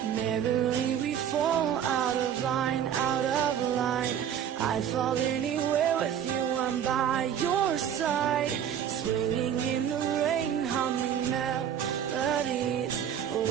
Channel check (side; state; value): left; quieter; 9.3 dB